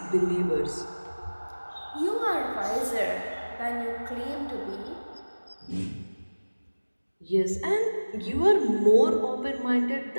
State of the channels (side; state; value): both; inverted; correlation -1.00